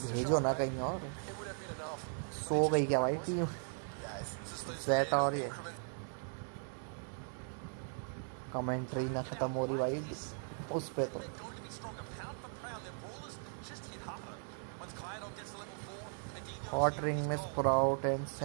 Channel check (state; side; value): silent; left; 52 dB below the other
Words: भेजो ना कहीं और। सो गई क्या भाई टीम ज़ेटा? और ये कमेंट्री ना खत्म हो रही भाई उस पे तो। हॉट रिंग में sprout and